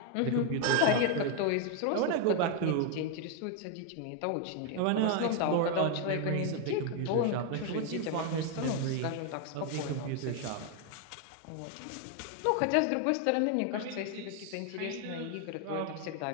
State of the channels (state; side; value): different; both; correlation 0.01